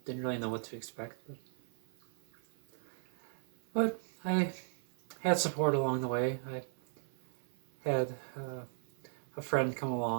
didn't really know what to expect, but I had support along the way. I had a friend come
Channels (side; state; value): left; silent; 53 dB below the other